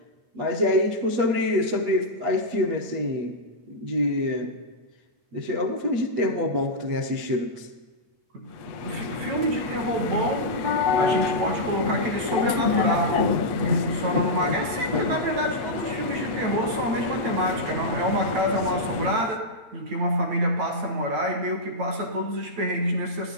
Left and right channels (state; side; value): late; left; 9.0 ms